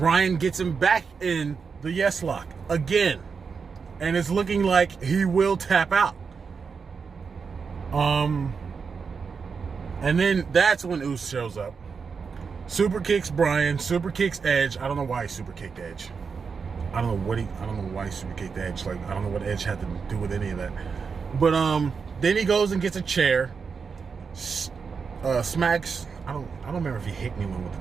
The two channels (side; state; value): left; quieter; 5.6 dB